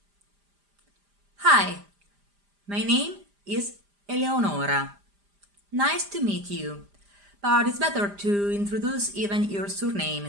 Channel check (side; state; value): left; late; 5.0 ms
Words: Hi, my name is Eleonora. Nice to meet you. But it's better to introduce even your surname